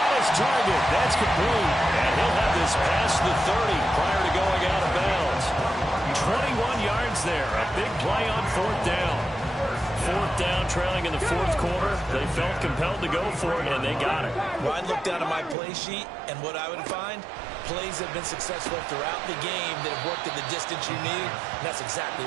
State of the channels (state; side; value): drops out; left; at 15.6 s